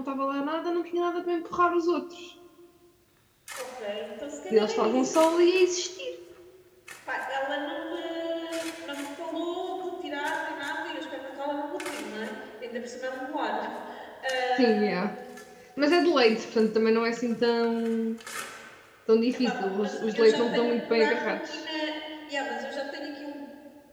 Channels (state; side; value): identical; both; correlation 1.00